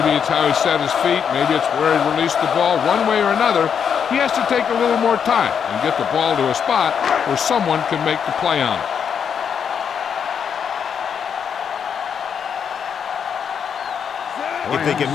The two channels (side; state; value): right; quieter; 7.4 dB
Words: it's how he set his feet. Maybe it's where he released the ball. One way or another, he has to take a little more time and get the ball to a spot where someone can make the play on it. If they can